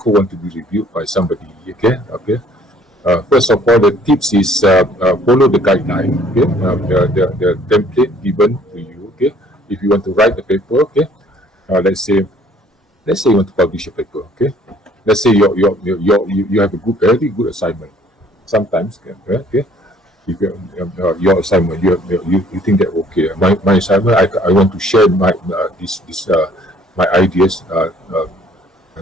want to be reviewed by somebody, okay? First of all, the tips is follow the guideline, okay? The template given to you, okay? If you want to write the paper, okay? Let's say you want to publish a paper, okay? Let's say you have a very good assignment. Sometimes, okay? If your assignment, you think that okay, my assignment, I want to share my my ideas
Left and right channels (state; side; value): normal; both; correlation 0.58